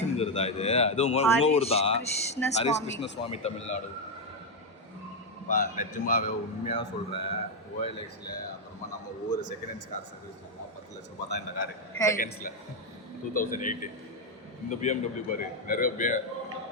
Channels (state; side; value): normal; both; correlation 0.03